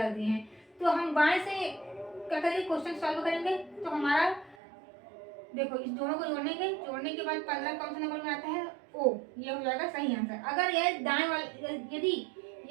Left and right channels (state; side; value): drops out; left; at 4.5 s